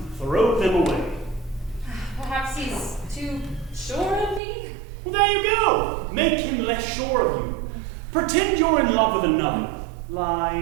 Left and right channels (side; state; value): left; drops out; at 4.4 s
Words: throw them away. Perhaps he's too sure of me? Well, there you go. Make him less sure of you. Pretend you're in love with another,